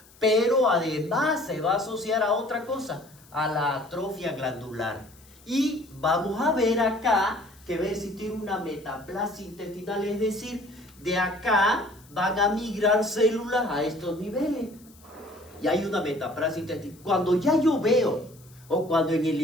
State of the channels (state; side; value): noise; left; hiss, 26 dB below the sound